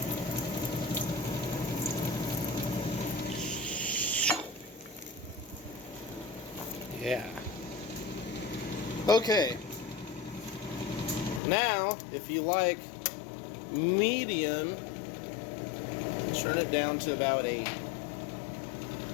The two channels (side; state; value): right; drops out; at 11.4 s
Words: Yeah. Okay. Now, if you like medium, turn it down to about 8.